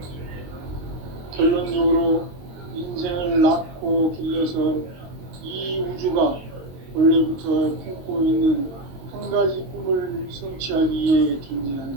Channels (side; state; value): left; late; 22 ms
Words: 결론적으로 인생을 낳고 길러서 이 우주가 원래부터 품고 있는 한 가지 꿈을 성취하기 위해